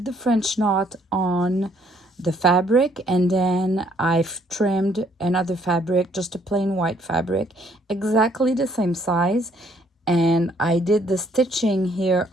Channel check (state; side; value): normal; both; correlation 0.65